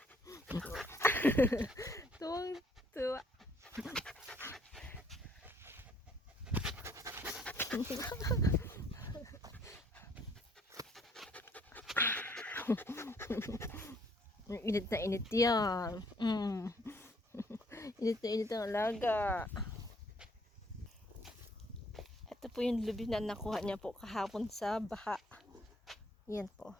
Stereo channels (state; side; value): normal; both; correlation 0.64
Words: Tuwang tuwa. Init na init yan. Init na init ang alaga. Ito po yung lubi na nakuha niya po kahapon sa baha. Yan po.